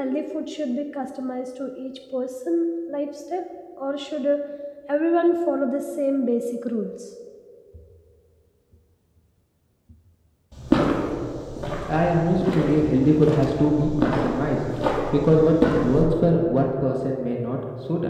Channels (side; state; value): both; identical; correlation 1.00